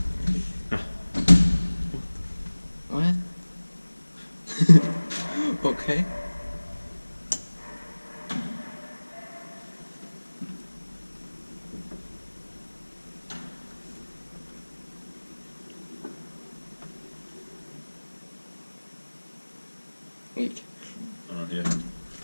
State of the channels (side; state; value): both; inverted; correlation -1.00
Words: What? Okay. Wait. Yeah.